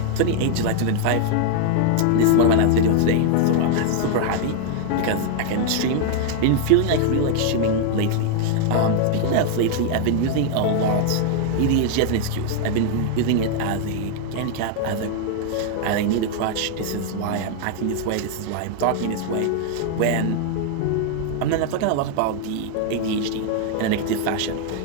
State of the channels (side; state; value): both; different; correlation 0.00